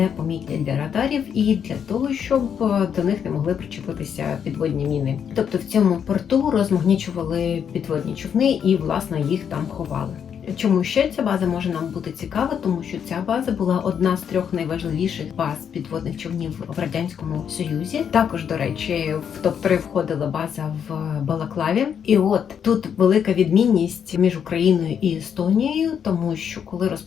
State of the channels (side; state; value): right; quieter; 7.9 dB